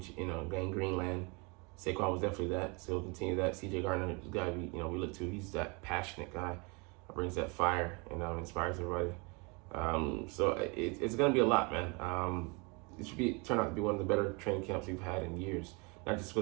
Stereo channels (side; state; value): left; quieter; 30.0 dB